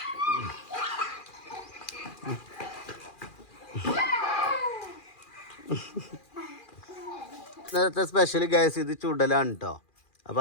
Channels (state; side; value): late; right; 2.4 ms